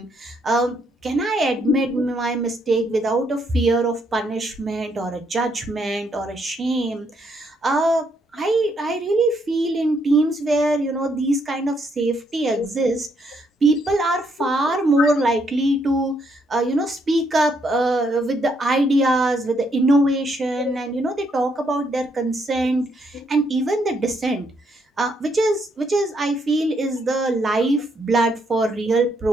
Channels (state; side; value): normal; both; correlation 0.74